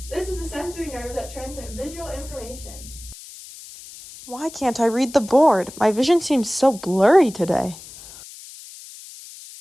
This is a sensory nerve that transmits visual information. Why can't I read the board? My vision seems so blurry today.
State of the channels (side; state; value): left; noise; hiss, 16 dB below the sound